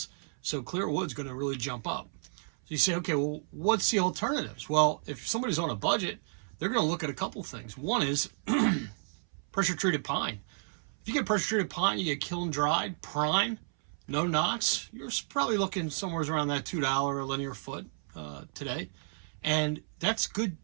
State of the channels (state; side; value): silent; left; 56 dB below the other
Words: So clear wood's going to really jump up. So you say, okay, well, what's the alternatives? Well, if somebody's on a budget, they're going to look at a couple things. One is pressure treated pine. If you get pressure treated pine, you get kiln dried, prime, no knots, you're probably looking somewhere around that $2 a linear foot today. And that's good